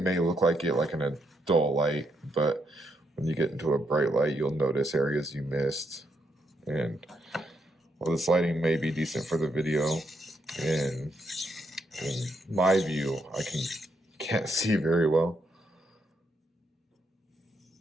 may look like it like in a dull light, but when you get into a bright light, you'll notice areas you missed. And while this lighting may be decent for the video, in my view, I can't see very well.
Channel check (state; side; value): normal; both; correlation 0.78